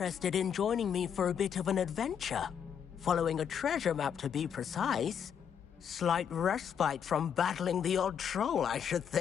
in joining me for a bit of an adventure. Following a treasure map, to be precise. Slight respite from battling the odd troll, I should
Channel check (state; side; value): quieter; right; 8.0 dB